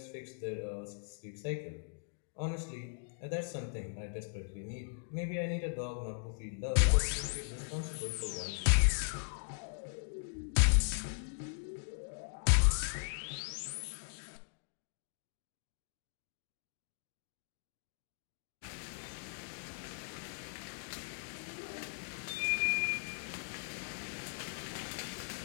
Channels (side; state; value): right; silent; digital silence